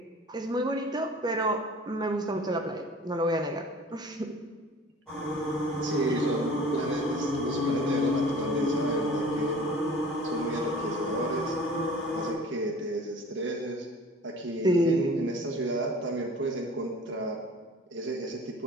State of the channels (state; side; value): normal; both; correlation 0.45